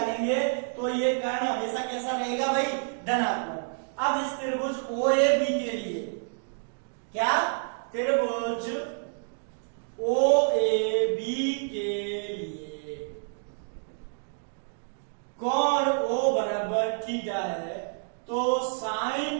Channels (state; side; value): silent; left; digital silence